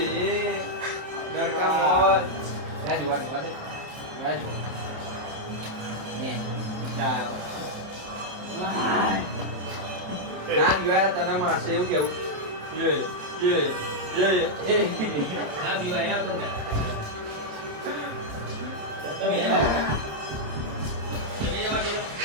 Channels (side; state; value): left; late; 28 ms